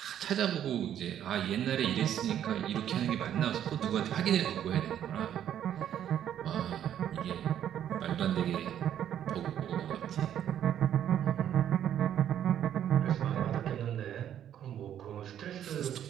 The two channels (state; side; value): quieter; left; 10.3 dB